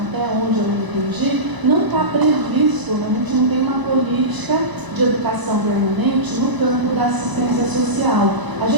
onde eu entendi, não está previsto, a gente não tem uma política de educação permanente no campo da assistência social. A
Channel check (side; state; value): left; late; 1.0 ms